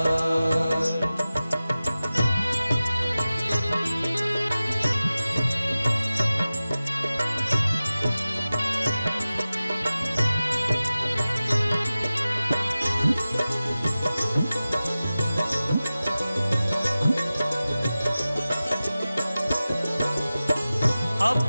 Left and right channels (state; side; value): inverted; both; correlation -0.96